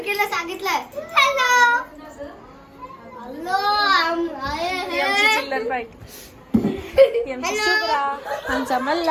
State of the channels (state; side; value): identical; both; correlation 1.00